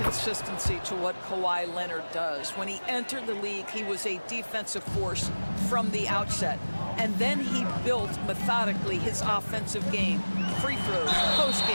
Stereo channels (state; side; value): inverted; both; correlation -1.00